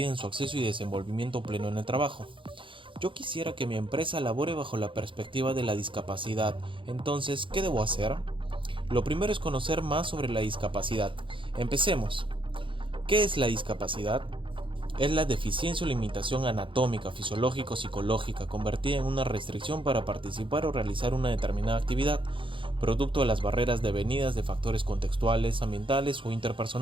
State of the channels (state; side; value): late; left; 0.25 ms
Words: su acceso y desenvolvimiento pleno en el trabajo. Yo quisiera que mi empresa labore bajo la perspectiva de la discapacidad, entonces, ¿qué debo hacer? Lo primero es conocer más sobre la discapacidad. Empecemos. ¿Qué es la discapacidad? Es la deficiencia o limitación anatómica, fisiológica o psicológica convertida en una restricción para participar o realizar una determinada actividad, producto de las barreras devenidas de factores contextuales, ambientales o